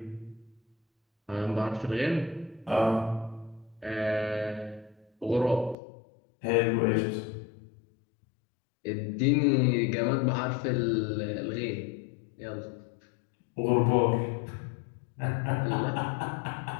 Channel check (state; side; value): drops out; right; at 5.8 s